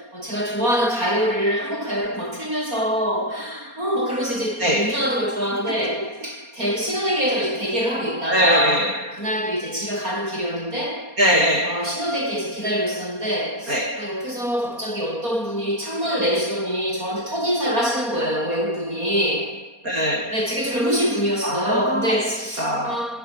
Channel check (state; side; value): late; left; 4.3 ms